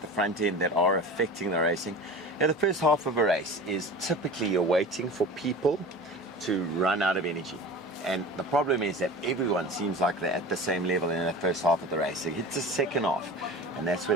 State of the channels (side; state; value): both; normal; correlation 0.35